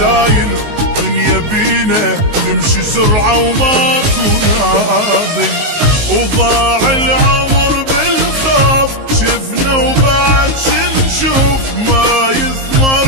دنيا بينا تمشي سرعة وماكو نازل. وضاع العمر بالخوف شفنا وبعد شنشوف، ما يثمر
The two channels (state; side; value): late; left; 19 ms